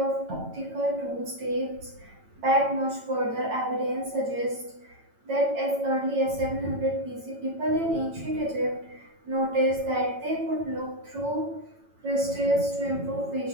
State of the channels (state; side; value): late; left; 9.0 ms